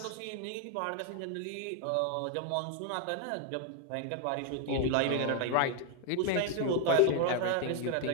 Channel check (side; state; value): both; different; correlation 0.01